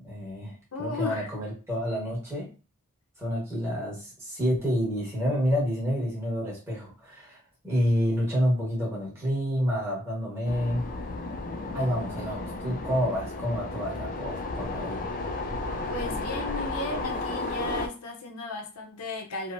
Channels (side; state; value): both; normal; correlation 0.64